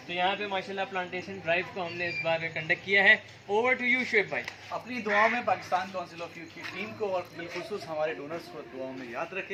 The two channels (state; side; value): identical; both; correlation 1.00